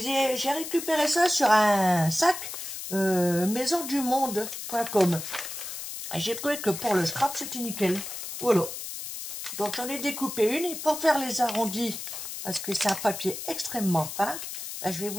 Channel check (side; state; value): left; noise; hiss, 8 dB below the sound